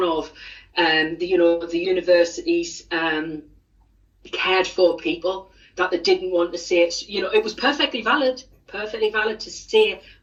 of the university's cared for people, that they didn't want to say it. It was perfectly valid to say,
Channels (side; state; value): both; identical; correlation 1.00